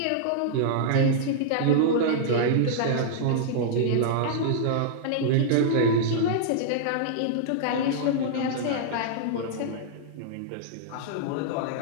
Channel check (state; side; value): different; both; correlation -0.02